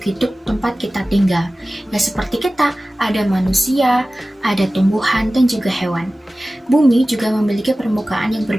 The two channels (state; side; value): normal; both; correlation 0.96